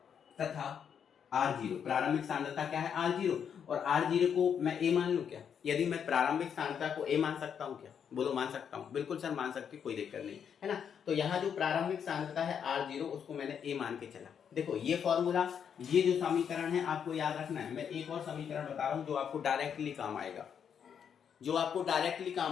तथा R0, प्रारंभिक सांद्रता क्या है, R0, और R0 को मैं A मान लूं क्या। यदि मैं प्रारंभिक सांद्रता को A मान सकता हूं क्या, बोलो मान सकता हूं, बिल्कुल सर मान सकते, कोई दिक्कत नहीं, है ना। तो यहाँ जो प्रारंभिक सांद्रता है R0, उसको मैंने A मान के चला। देखो ये फॉर्मूला, ये जो समीकरण है आपको याद रखना है। मैं एक और समीकरण बता रहा हूँ जो आपको डायरेक्टली काम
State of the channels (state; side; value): quieter; right; 7.8 dB